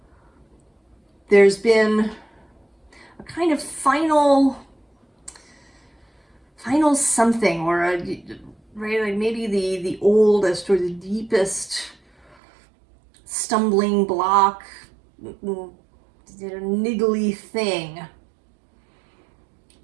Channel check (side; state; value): left; drops out; at 12.4 s